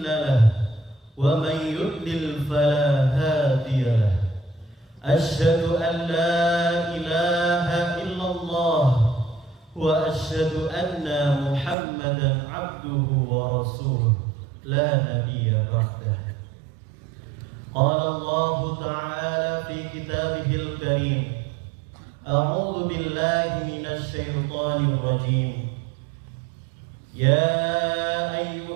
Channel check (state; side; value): drops out; left; at 11.8 s